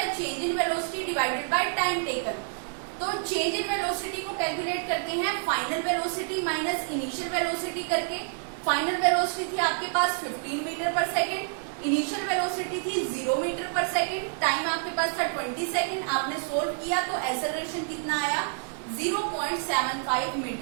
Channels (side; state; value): left; silent; digital silence